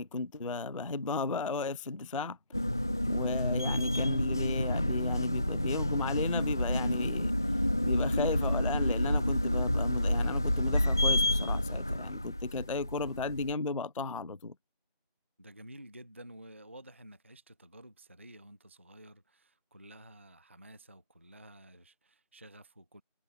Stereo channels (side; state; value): both; inverted; correlation -0.75